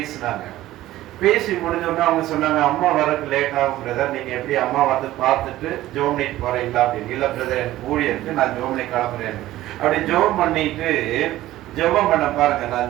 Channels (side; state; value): left; quieter; 15.2 dB